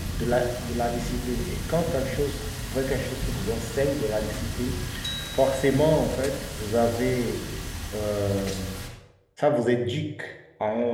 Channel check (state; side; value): identical; both; correlation 1.00